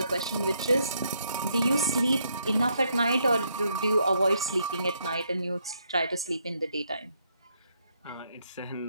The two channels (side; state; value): both; inverted; correlation -0.75